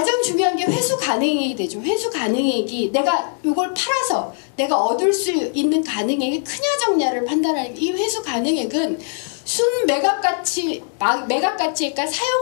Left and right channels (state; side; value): silent; right; 62 dB below the other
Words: 중요한 게 회수 가능액이 되죠. 회수 가능액이 내가 이걸 팔아서 내가 얻을 수 있는 가능액이 크냐 적냐를 판단하는, 이 회수 가능액은 순 매각가치니까